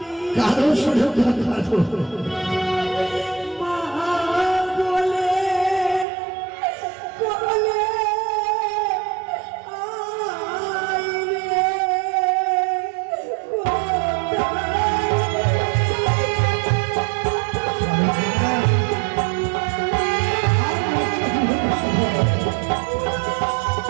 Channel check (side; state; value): left; drops out; at 6.1 s